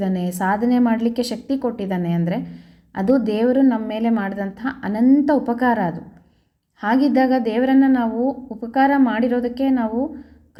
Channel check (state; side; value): identical; both; correlation 1.00